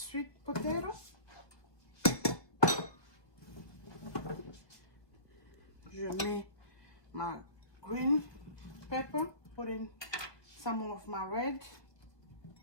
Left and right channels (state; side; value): late; right; 1.6 ms